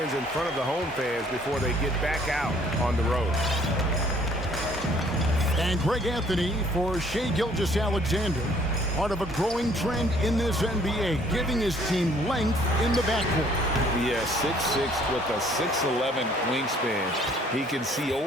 in front of the home fans before they get back out on the road. And Greg Anthony for Shai Gilgeous-Alexander, part of a growing trend in this NBA, giving his team length in the backcourt. Yeah, 6'6" with a 6'11" wingspan. He can see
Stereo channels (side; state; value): both; normal; correlation 0.60